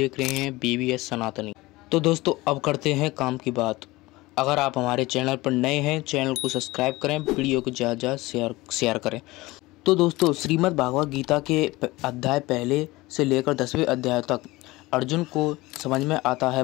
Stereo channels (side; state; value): right; quieter; 20.4 dB